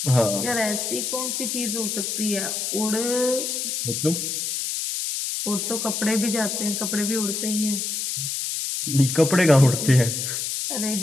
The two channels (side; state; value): left; noise; hiss, 2 dB below the sound